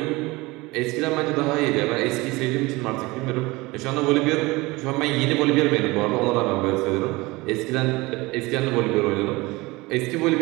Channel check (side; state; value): left; quieter; 22.2 dB